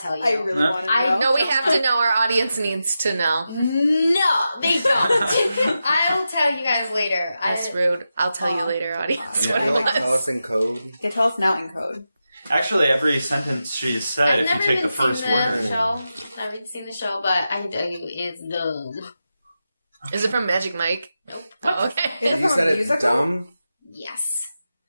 tell you. I really want to know. No, we have to know. Our audience needs to know. No, they don't. I will tell you guys later. That's rude. I'll tell you later, audience. What Can it you tell was. us in code? Yeah, tell us now in code. Actually, every sentence she said, I've if you never take even the first seen the word. show. I've never seen the show, but I can tell you it's dumb. Is it from Magic Mike? Nope. Oh, okay. Is it You from said a it's musical? dumb? Yes.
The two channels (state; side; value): inverted; both; correlation -0.90